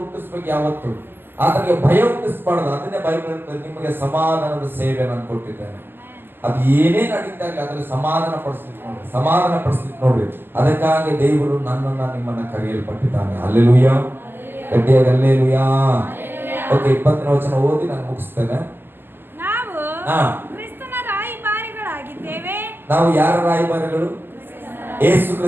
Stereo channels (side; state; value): left; late; 0.10 ms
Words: ಹುಟ್ಟಿಸ್ಬೇಕು ಯಾವತ್ತು, ಆತನಿಗೆ ಭಯ ಹುಟ್ಟಿಸ್ಬಾರ್ದು. ಅದನ್ನೇ ಬೈಬಲ್ ಹೇಳ್ತದೆ, ನಿಮಗೆ ಸಮಾಧಾನದ ಸೇವೆ ನಾನು ಕೊಟ್ಟಿದ್ದೇನೆ. ಅದು ಏನೇ ನಡೀತಾಗಲಿ ಅದ್ರಲ್ಲಿ ಸಮಾಧಾನ ಪಡಿಸ್ಲಿಕ್ಕೆ ನೋಡ್ರಿ. ಅದಕ್ಕಾಗಿ ದೇವರು ನನ್ನನ್ನ ನಿಮ್ಮನ್ನ ಕರೆಯಲ್ಪಟ್ಟಿದ್ದಾನೆ. ಅಲ್ಲೆಲೂಯ್ಯ. ಗಟ್ಟಿಯಾಗಿ ಅಲ್ಲೆಲೂಯ್ಯ. ಓಕೆ, 20ನೇ ವಚನ ಓದಿ ನಾನು ಮುಗಿಸ್ತೇನೆ. ನಾವು ಯಾರ ರಾಯಭಾರಿಗಳು? ಯೇಸು